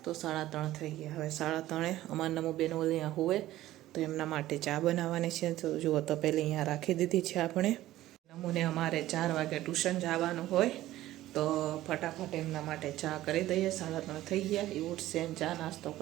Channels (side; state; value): left; quieter; 15.0 dB